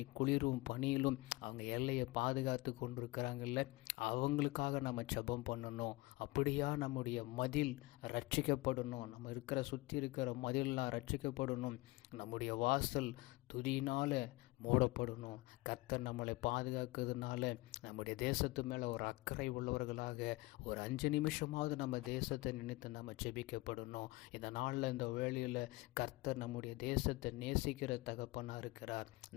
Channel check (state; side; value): quieter; right; 21.6 dB